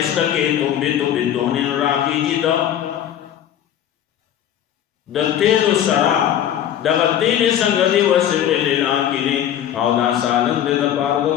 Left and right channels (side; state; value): right; quieter; 10.6 dB